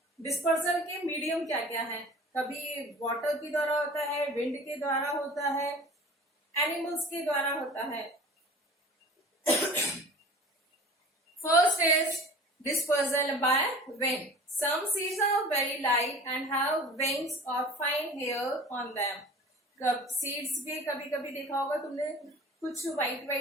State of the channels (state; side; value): normal; both; correlation 0.42